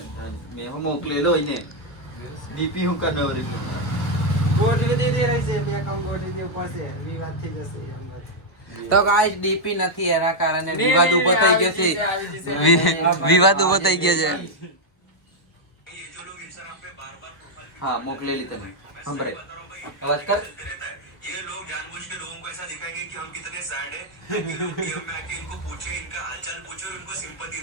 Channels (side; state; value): right; late; 1.1 ms